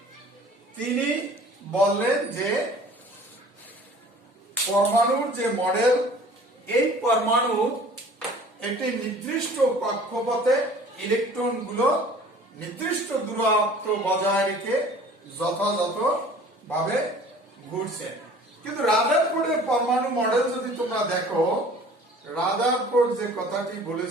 তিনি বললেন যে পরমাণুর যে মডেল, এই পরমাণু একটি নির্দিষ্ট কক্ষপথে ইলেকট্রনগুলো নির্দিষ্ট দূরত্ব বজায় রেখে যথাযথভাবে ঘুরছে। কিন্তু রাদারফোর্ডের পরমাণু মডেল যদি তোমরা দেখো, রাদারফোর্ড যে কথাটি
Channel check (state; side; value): normal; both; correlation 0.48